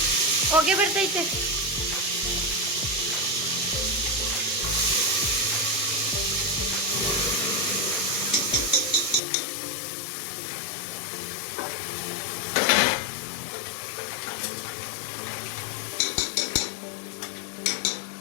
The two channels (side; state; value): right; drops out; at 9.2 s